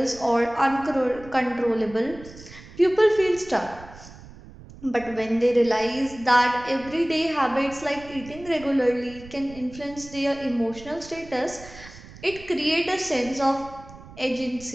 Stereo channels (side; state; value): right; noise; rumble, 18 dB below the sound